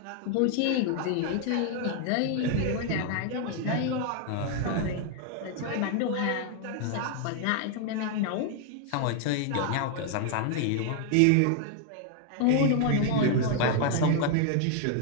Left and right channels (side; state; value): both; different; correlation 0.00